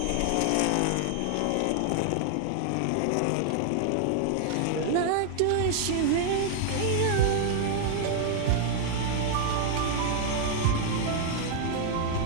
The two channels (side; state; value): both; different; correlation 0.00